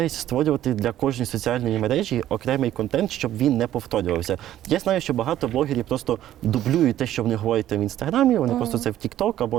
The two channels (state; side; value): quieter; left; 12.5 dB